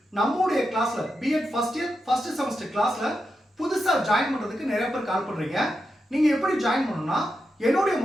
நம்மளுடைய கிளாஸ்ல BEd first year first semester கிளாஸ்ல புதுசா ஜாயின் பண்றதுக்கு நிறைய பேர் கால் பண்றீங்க. நீங்க எப்படி ஜாயின் பண்ணணும்னா என்னுடைய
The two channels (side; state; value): both; normal; correlation 0.87